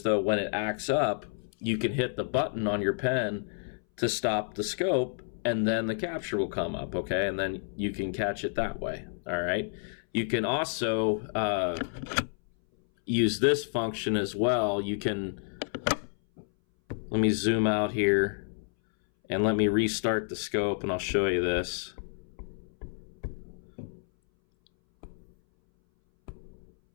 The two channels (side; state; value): right; silent; 58 dB below the other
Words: though, when it acts up, you can hit the button on your pen to stop the scope, and then the capture will come up. Okay, and then you can catch it that way. All right. You can also use this function as well. You can, let me zoom out here and let me restart the scope, and I'll show you this.